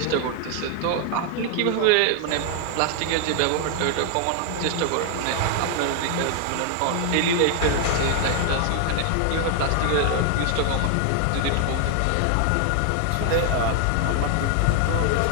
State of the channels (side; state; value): both; different; correlation 0.00